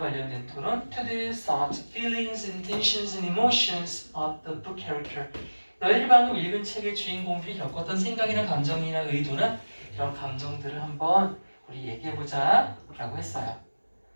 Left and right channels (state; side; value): inverted; both; correlation -1.00